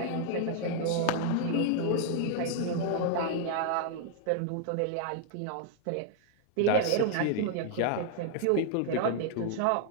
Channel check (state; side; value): different; both; correlation 0.00